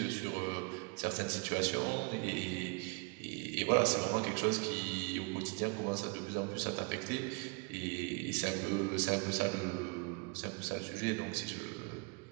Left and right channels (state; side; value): quieter; left; 31.3 dB